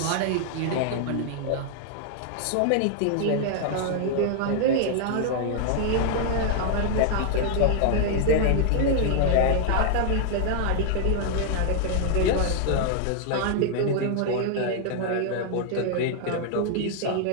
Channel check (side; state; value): both; different; correlation 0.00